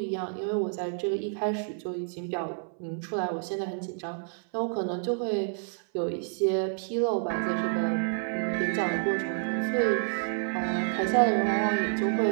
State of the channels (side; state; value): left; silent; 58 dB below the other